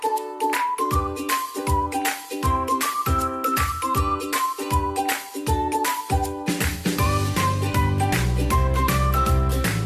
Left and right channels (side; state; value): both; identical; correlation 1.00